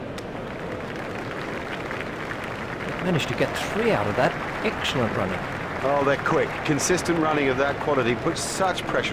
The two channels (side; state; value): both; identical; correlation 1.00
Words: Managed to get 3 out of that. Excellent running. Oh, they're quick. Consistent running of that quality puts such